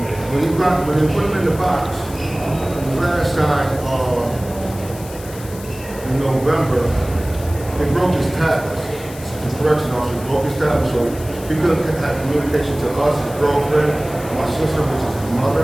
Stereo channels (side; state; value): left; noise; hiss, 17 dB below the sound